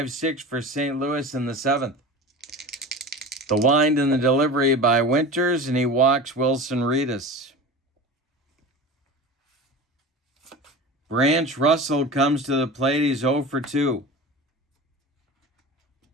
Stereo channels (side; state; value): both; normal; correlation 0.33